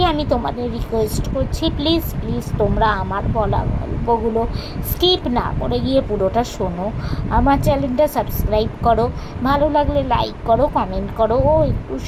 আমি তোমাদের রিকোয়েস্ট করছি, প্লিজ তোমরা আমার বলা গল্পগুলো স্কিপ না করে গিয়ে পুরোটা শোনো। আমার চ্যানেলটা সাবস্ক্রাইব করো, ভালো লাগলে লাইক করো, কমেন্ট করো ও একটু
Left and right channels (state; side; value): identical; both; correlation 1.00